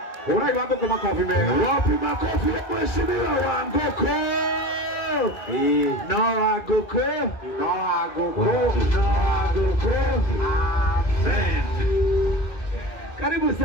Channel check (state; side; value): late; right; 2.5 ms